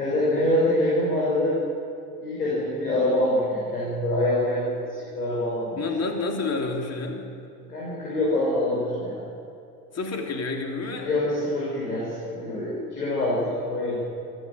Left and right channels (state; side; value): normal; both; correlation 0.30